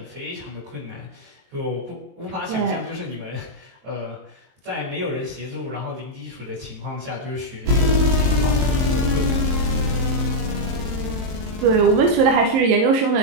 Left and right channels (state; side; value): late; left; 23 ms